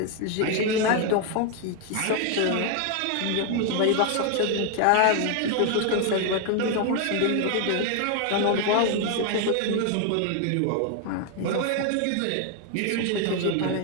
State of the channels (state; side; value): different; both; correlation 0.01